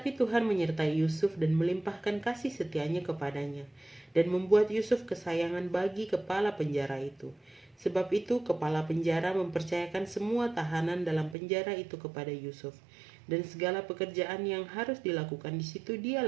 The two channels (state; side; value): drops out; left; at 11.4 s